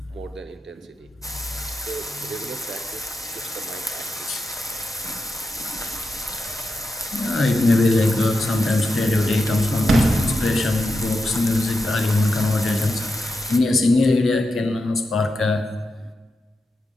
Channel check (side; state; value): both; normal; correlation 0.87